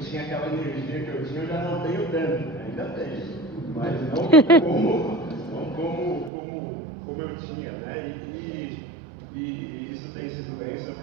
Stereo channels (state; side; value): drops out; left; at 6.3 s